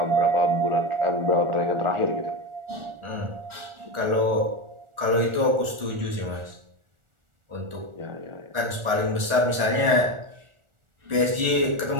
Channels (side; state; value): left; late; 1.4 ms